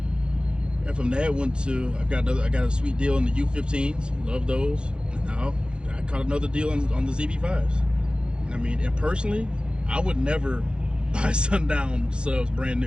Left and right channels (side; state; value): left; late; 0.052 ms